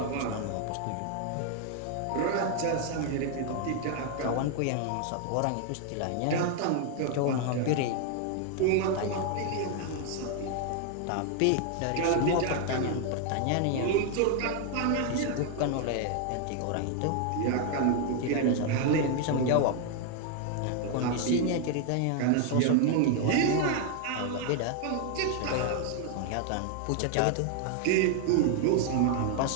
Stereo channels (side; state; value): both; different; correlation 0.00